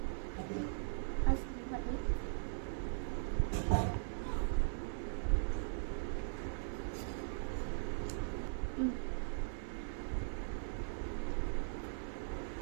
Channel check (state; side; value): silent; left; 51 dB below the other